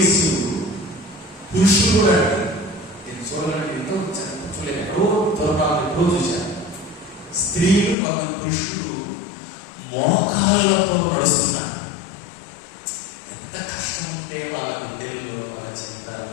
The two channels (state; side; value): drops out; right; at 8.0 s